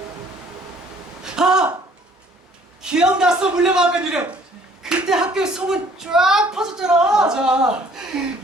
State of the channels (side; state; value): both; normal; correlation 0.58